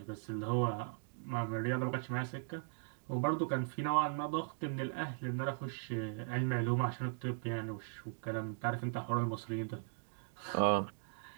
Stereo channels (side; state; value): left; silent; 52 dB below the other